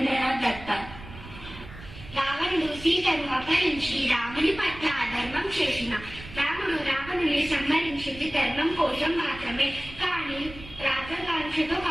దత్త. రావణుడు సీతను అపహరించి రాముని పట్ల అధర్మం చేసిన రాముడు రావణుని సంహరించింది ధర్మం కోసం మాత్రమే, కానీ రాజకాంక్షతో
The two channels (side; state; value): right; noise; rumble, 15 dB below the sound